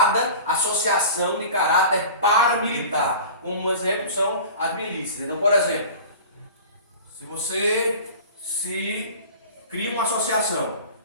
associação de caráter paramilitar. Um exemplo são as milícias. Então, por exemplo, se você cria uma associação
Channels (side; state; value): both; inverted; correlation -0.38